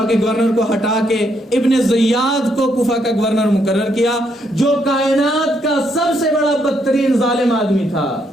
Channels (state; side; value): normal; both; correlation 0.75